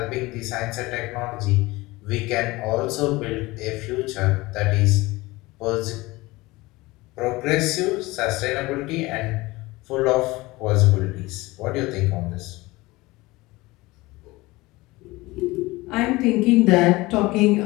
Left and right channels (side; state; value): right; quieter; 21.1 dB